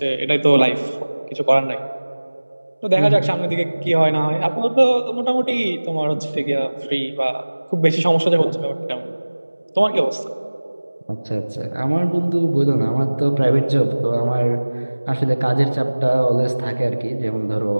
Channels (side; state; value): both; inverted; correlation -1.00